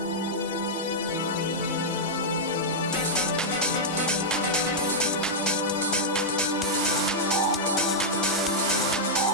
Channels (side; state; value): both; normal; correlation -0.07